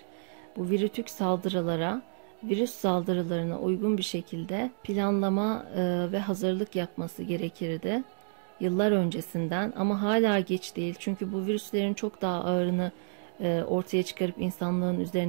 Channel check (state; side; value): silent; left; digital silence